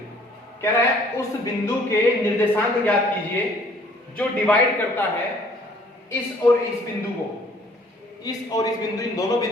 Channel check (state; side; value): normal; both; correlation 0.58